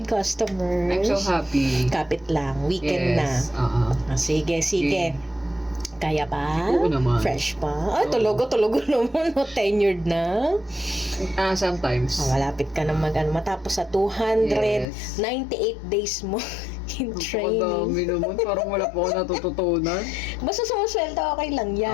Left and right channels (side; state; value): right; drops out; at 14.9 s